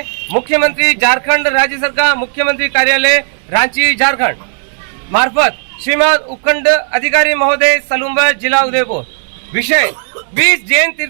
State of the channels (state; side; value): silent; left; digital silence